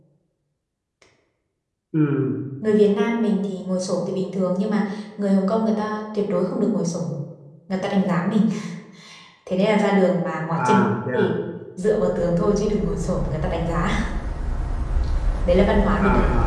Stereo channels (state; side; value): identical; both; correlation 1.00